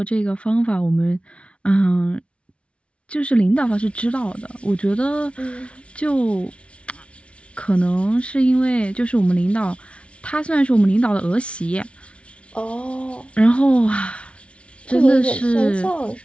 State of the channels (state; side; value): late; right; 0.060 ms